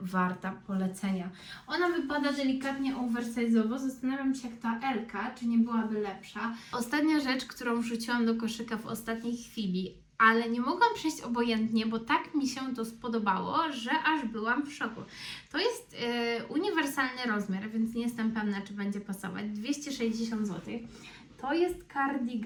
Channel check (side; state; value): both; identical; correlation 1.00